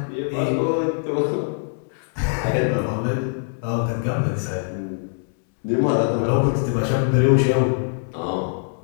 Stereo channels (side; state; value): right; silent; 64 dB below the other